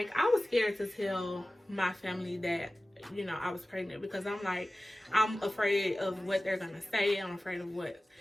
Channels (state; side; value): normal; both; correlation 0.96